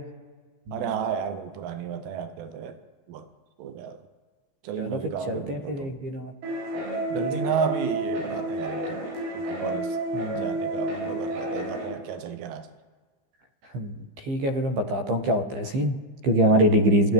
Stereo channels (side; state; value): left; late; 15 ms